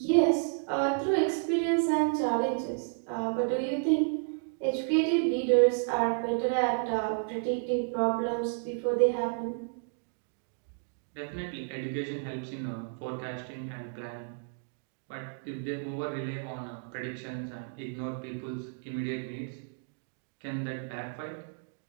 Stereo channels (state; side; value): silent; left; digital silence